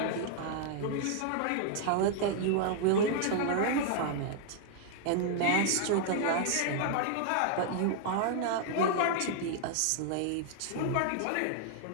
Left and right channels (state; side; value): different; both; correlation 0.00